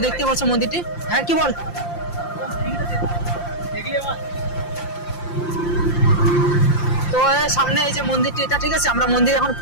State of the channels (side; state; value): right; late; 5.8 ms